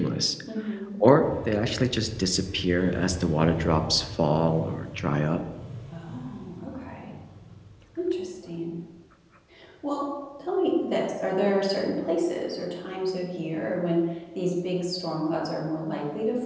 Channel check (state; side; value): identical; both; correlation 1.00